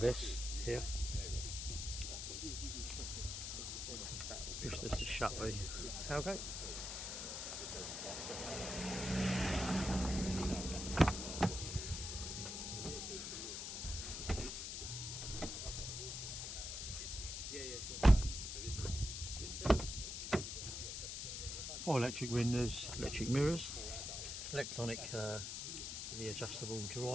here. Push this to shut the tailgate. Four electric windows, electric mirrors, electronic, the adjustable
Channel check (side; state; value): left; noise; hiss, 4 dB below the sound